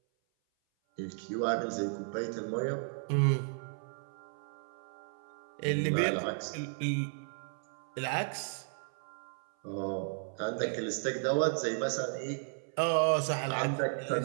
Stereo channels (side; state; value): left; silent; 55 dB below the other